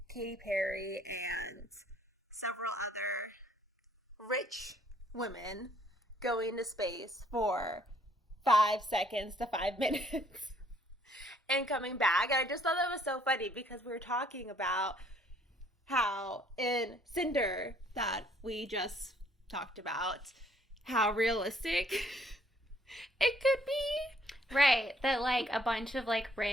Katy Perry and several other rich women going to space for 5 seconds to 5 minutes and coming back. And I just thought that was so funny because we were talking about how in Cinder that we just talked about, how realistic it could be. Right. That like a bunch of like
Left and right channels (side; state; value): both; normal; correlation 0.64